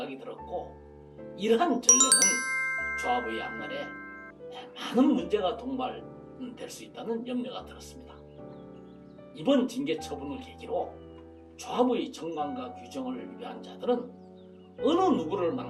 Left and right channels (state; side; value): identical; both; correlation 1.00